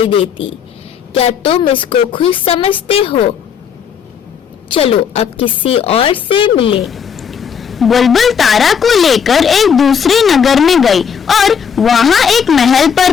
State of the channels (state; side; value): quieter; right; 7.3 dB